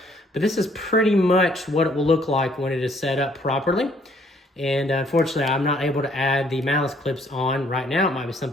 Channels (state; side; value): normal; both; correlation 0.64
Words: but this is pretty much what it will look like when it is set up properly. And unfortunately, I'm not able to add the malice clips on right now. It might be